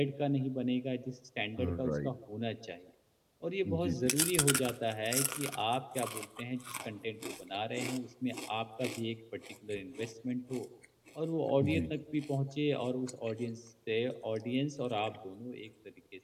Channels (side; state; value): both; identical; correlation 1.00